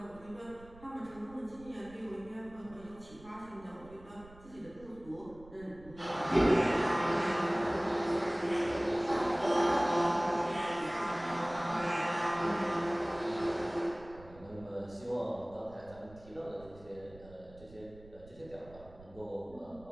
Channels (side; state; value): right; noise; rumble, 21 dB below the sound